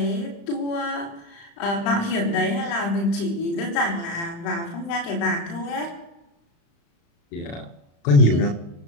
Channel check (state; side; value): late; right; 35 ms